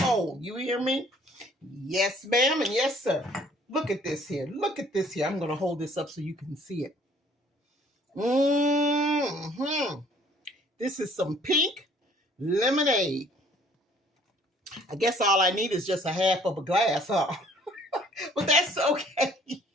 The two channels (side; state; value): both; normal; correlation 0.58